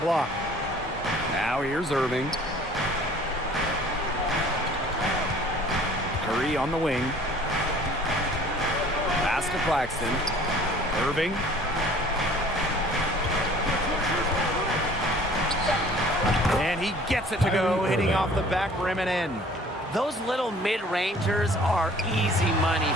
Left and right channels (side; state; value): both; normal; correlation 0.51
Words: block. Now here's Irving. Curry on the wing. Pass to Claxton. Irving. And he gets it to go, hitting off the back rim and in. Those little mid-rangers are easy money